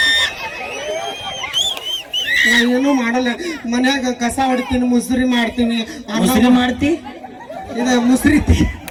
ನಾ ಏನು ಮಾಡಲ್ಲ ಮನ್ಯಾಗ ಕಸ ಹೊಡಿತೀನಿ ಮುಸ್ರಿ ಮಾಡ್ತೀನಿ ಮುಸ್ರಿ ಮಾಡ್ತಿ ಇದ ಮುಸ್ರಿ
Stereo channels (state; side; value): identical; both; correlation 1.00